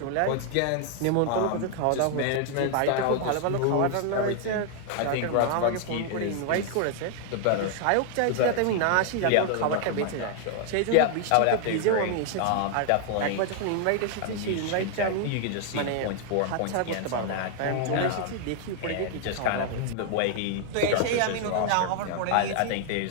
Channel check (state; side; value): different; both; correlation 0.00